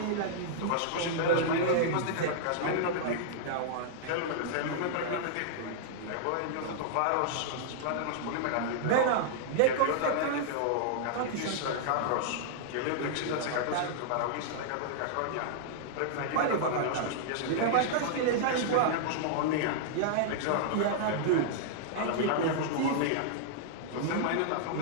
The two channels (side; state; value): both; different; correlation -0.01